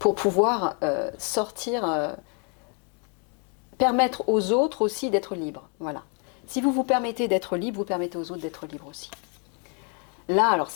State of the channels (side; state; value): right; quieter; 38.2 dB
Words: pour pouvoir sortir, permettre aux autres aussi d'être libres. Voilà. Si vous vous permettez d'être libre, vous permettez aux autres d'être libres aussi. Là, alors